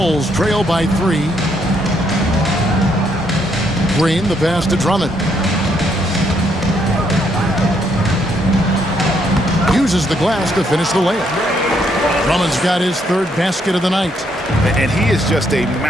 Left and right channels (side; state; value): both; normal; correlation 0.73